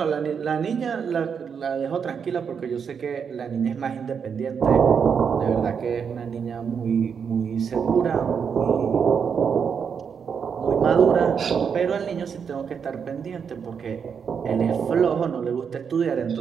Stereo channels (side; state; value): left; quieter; 6.8 dB